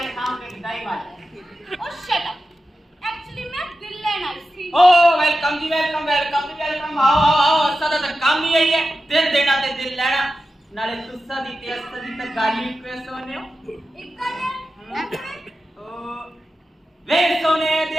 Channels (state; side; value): normal; both; correlation 0.92